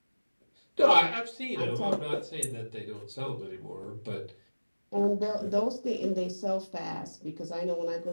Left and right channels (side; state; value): both; inverted; correlation -1.00